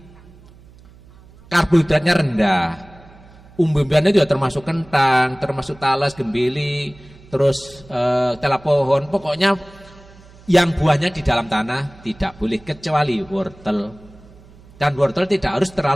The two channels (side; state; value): right; noise; hum, 24 dB below the sound